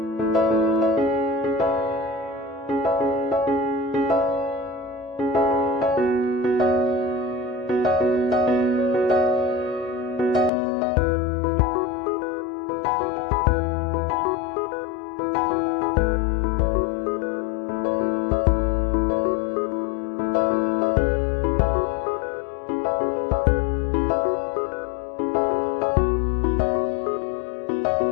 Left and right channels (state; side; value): drops out; right; at 10.5 s